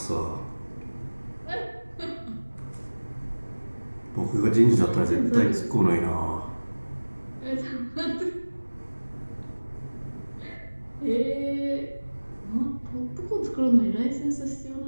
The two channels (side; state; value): both; inverted; correlation -1.00